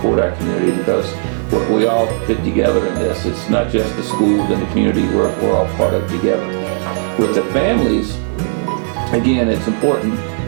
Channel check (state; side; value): silent; left; 69 dB below the other